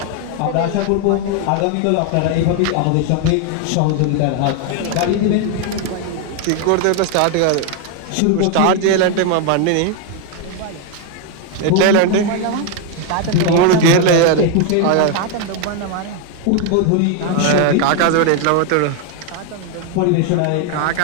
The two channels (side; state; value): both; different; correlation 0.01